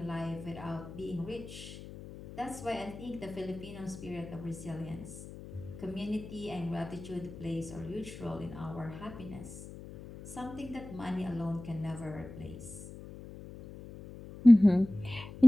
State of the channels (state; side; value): noise; left; hum, 13 dB below the sound